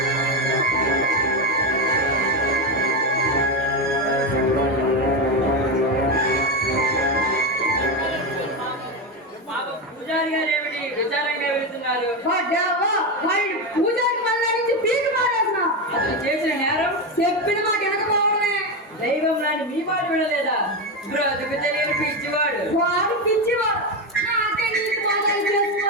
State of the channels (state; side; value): normal; both; correlation 0.13